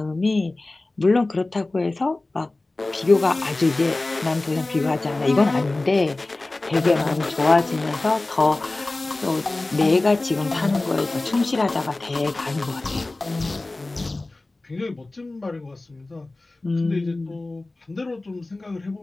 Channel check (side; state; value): right; quieter; 3.0 dB